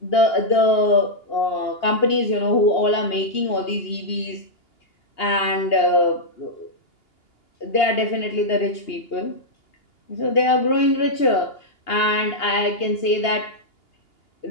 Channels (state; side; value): late; right; 2.8 ms